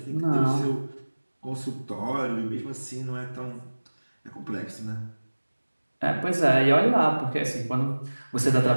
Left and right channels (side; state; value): both; inverted; correlation -1.00